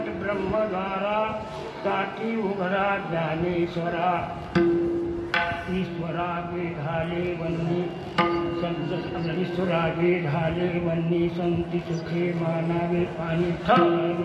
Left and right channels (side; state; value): both; identical; correlation 1.00